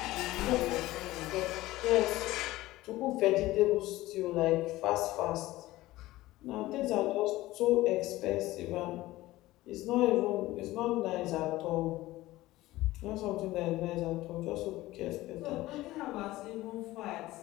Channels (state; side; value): quieter; right; 17.4 dB